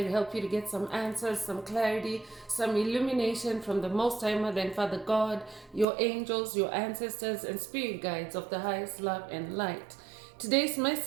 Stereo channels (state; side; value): drops out; left; at 5.9 s